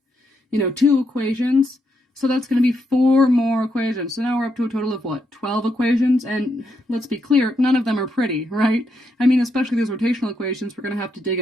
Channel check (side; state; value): both; normal; correlation 0.80